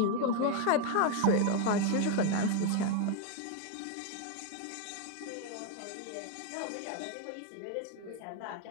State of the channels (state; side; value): different; both; correlation 0.01